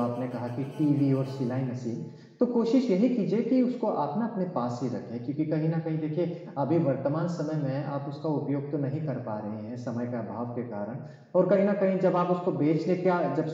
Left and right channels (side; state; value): both; identical; correlation 1.00